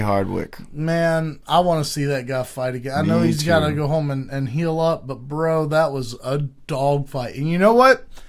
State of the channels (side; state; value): both; identical; correlation 1.00